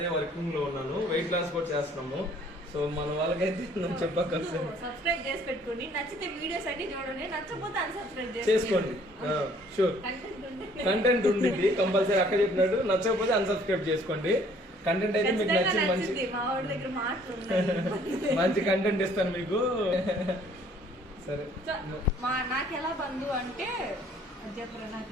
వర్కింగ్ లో ఉన్నాను. వెయిట్ లాస్ కూడా చేస్తున్నాము. సో మన వాళ్ళకైతే చెప్పక్కర్లేదు, సబ్స్క్రైబ్ చేసి పెట్టుకోండి. నచ్చితే వీడియోస్ అన్ని చూడండి, నచ్చకపోతే అన్సబ్స్క్రైబ్ చేసుకోండి. షూర్ కంటెంట్ ఉండింది కంపల్సరీ. అక్క చెప్పినట్టు నచ్చకపోతే అన్సబ్స్క్రైబ్ చేసుకోండి. కంటెంట్ అయితే మీకు నచ్చింది, మంచి కంటెంట్ ఇస్తాను మీకు. సరే నాకు ఎలా బంధు అంటే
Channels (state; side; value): normal; both; correlation 0.59